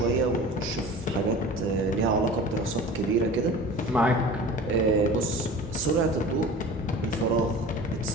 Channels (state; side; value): normal; both; correlation 0.39